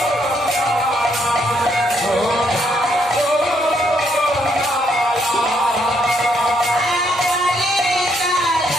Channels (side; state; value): both; normal; correlation 0.73